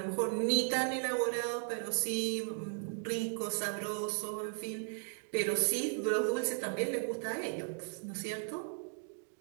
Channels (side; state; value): left; silent; 54 dB below the other